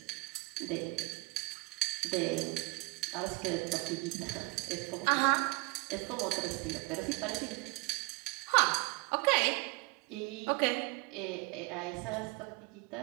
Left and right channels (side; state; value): left; quieter; 26.7 dB